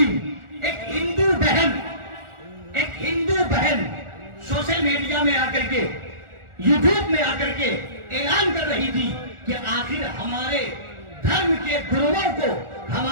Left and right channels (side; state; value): left; late; 1.4 ms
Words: ایک ہندو بہن سوشل میڈیا میں آ کر کے، یوٹیوب میں آ کر کے اعلان کر رہی تھی کہ آخر ہمارے دھرم کے گروؤں کو،